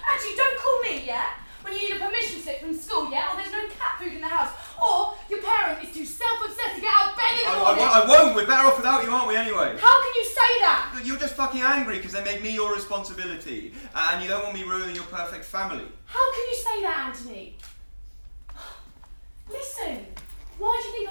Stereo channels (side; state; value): both; inverted; correlation -1.00